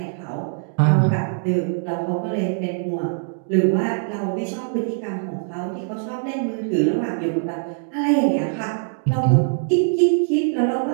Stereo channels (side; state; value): left; silent; digital silence